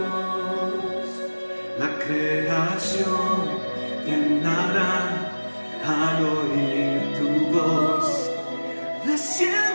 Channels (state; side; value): inverted; both; correlation -1.00